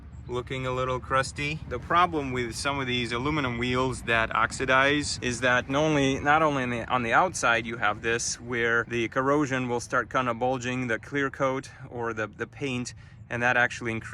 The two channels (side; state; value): both; identical; correlation 1.00